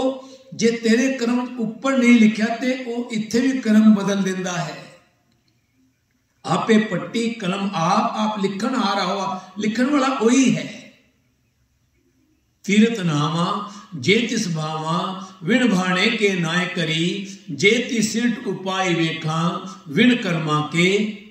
ਜੇ ਤੇਰੇ ਕਰਮ ਉੱਪਰ ਨਹੀਂ ਲਿਖਿਆ ਤੇ ਉਹ ਇੱਥੇ ਵੀ ਕਰਮ ਬਦਲ ਦਿੰਦਾ ਹੈ। ਆਪੇ ਪੱਟੀ ਕਲਮ ਆਪ ਲਿਖਣ ਆ ਰਹਾ ਹੋ, ਲਿਖਣ ਵਾਲਾ ਉਹੀ ਹੈ। ਤੀਰਤ ਨਾਮਾ ਜੇ ਤਿਸ ਭਾਵਾਂ ਵਿਣ ਭਾਣੇ ਕੇ ਨਾਇ ਕਰੀ, ਜੇ ਤਿਸਿਟ ਉਪਾਇ ਵੇਖਾਂ ਵਿਣ ਕਰਮਾ ਕੇ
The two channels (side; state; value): both; identical; correlation 1.00